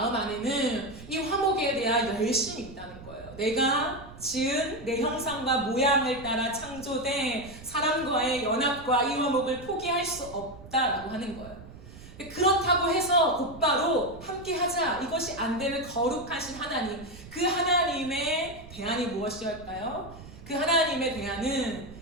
안에는 이 화목에 대한 열심이 있다는 거예요. 내가 지은 내 형상과 모양을 따라 창조된 사람과의 연합과 이 화목을 포기할 수 없다라고 하는 거예요. 그렇다고 해서 곧바로 함께 하자, 이것이 안 되는 거룩하신 하나님, 그 하나님의 대안이 무엇이었을까요? 그 하나님의 대안은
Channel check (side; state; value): right; noise; rumble, 17 dB below the sound